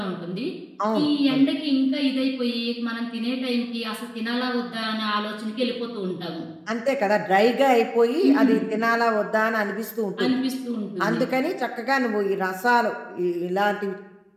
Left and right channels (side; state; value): both; identical; correlation 1.00